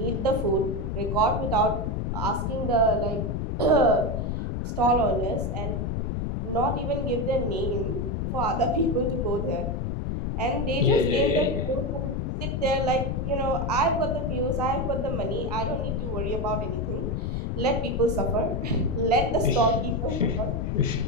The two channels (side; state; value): left; noise; rumble, 1 dB below the sound